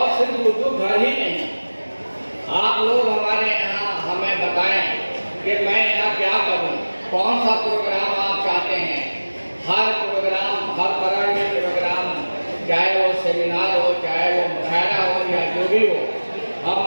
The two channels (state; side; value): inverted; both; correlation -1.00